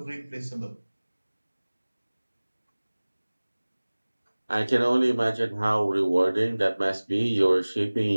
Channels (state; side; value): inverted; both; correlation -1.00